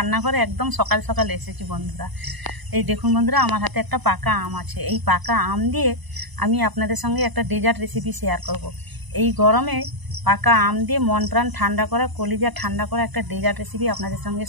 একদম সকাল সকাল এসেছি বন্ধুরা। এই দেখুন বন্ধুরা, আমার হাতে একটা পাকা আম আছে। এই পাকা আম দিয়ে আমি আপনাদের সঙ্গে একটা ডেজার্ট রেসিপি শেয়ার করব। এই গরমে পাকা আম দিয়ে মন প্রাণ ঠান্ডা করা, কলিজা ঠান্ডা করা একটা ডেজার্ট রেসিপি আপনাদের সঙ্গে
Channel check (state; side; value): late; left; 1.0 ms